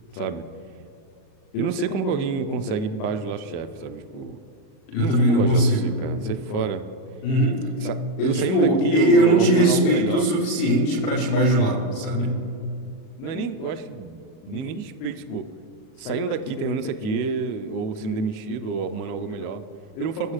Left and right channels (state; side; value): late; right; 38 ms